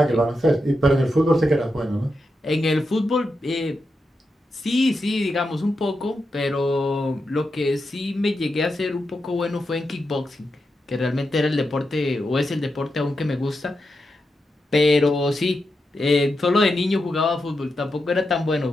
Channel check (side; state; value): both; normal; correlation 0.87